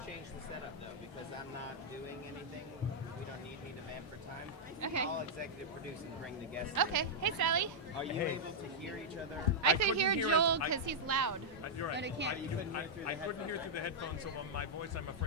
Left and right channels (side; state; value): both; normal; correlation -0.06